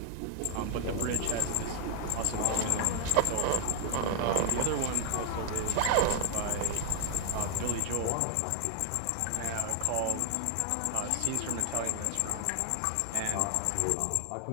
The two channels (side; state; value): both; different; correlation 0.01